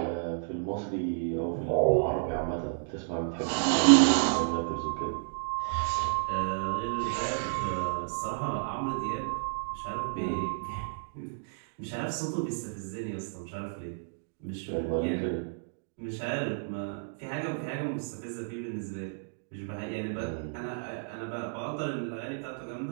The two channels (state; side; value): silent; left; digital silence